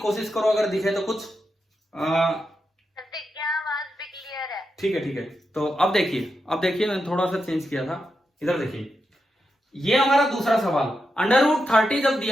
करो, अगर दिखे तो कुछ क्या आवाज भी क्लियर है? ठीक है। तो अब देखिए मैंने थोड़ा सा चेंज किया था। इधर देखिए, ये हमारा दूसरा सवाल। √30 जब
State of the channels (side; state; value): both; normal; correlation 0.86